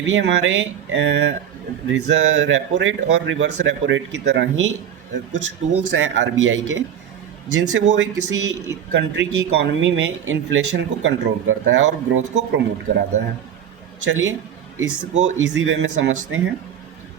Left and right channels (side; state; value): left; quieter; 9.1 dB